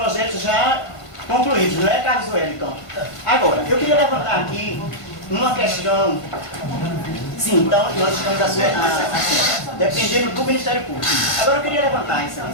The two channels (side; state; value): right; late; 1.5 ms